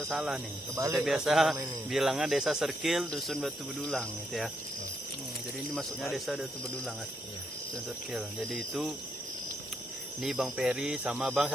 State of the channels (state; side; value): normal; both; correlation 0.78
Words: salah nih. Kebalik Kita biasa selama ini. bilangnya desa Circle, dusun Batu Bedulang gitu ya. Jadi ini masuknya desa Batu Bedulang kan. Iya. Dusun Circle. Jadi itu ini Bang Peri sama Bang